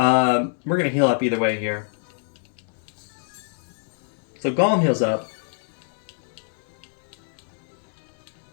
going to heal up either way here. So Golem heals up.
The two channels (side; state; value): right; silent; digital silence